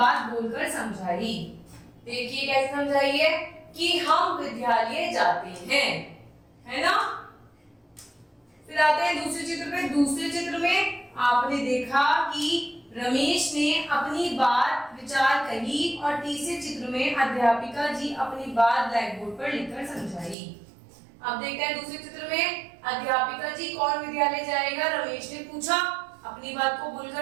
बोलकर समझाई। देखिए कैसे समझाई है कि हम विद्यालय जाते हैं, है ना। फिर आते हैं दूसरे चित्र पे। दूसरे चित्र में आपने देखा कि रमेश ने अपनी बात विचार कही और तीसरे चित्र में अध्यापिका जी अपनी बात ब्लैक बोर्ड पर लिखकर समझाई। अब देखते हैं दूसरे चित्र में अध्यापिका जी कौन विद्यालय जाएगा, रमेश ने पूछा, अपनी बात को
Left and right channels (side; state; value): left; drops out; at 20.4 s